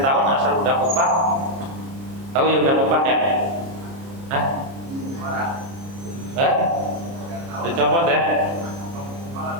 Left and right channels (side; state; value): left; late; 30 ms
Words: asal udah kupak, tahu ya udah kupak ya? Hah? Dicopot ya?